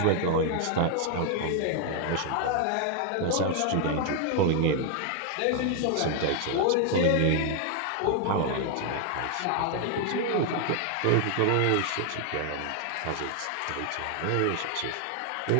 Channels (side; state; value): both; different; correlation 0.00